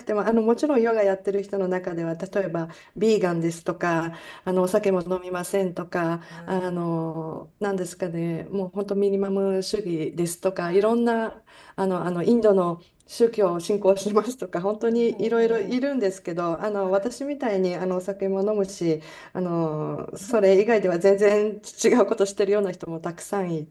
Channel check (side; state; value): both; identical; correlation 1.00